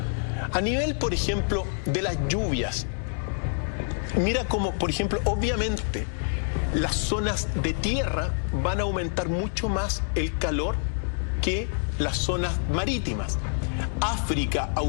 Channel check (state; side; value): silent; right; digital silence